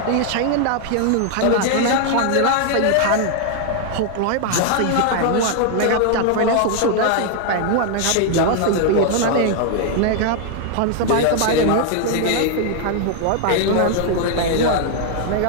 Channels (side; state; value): both; different; correlation 0.00